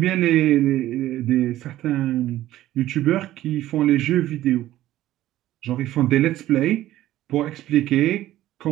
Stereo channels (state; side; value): quieter; left; 14.5 dB